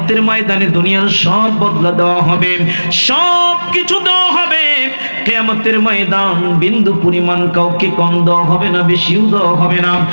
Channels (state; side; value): inverted; both; correlation -1.00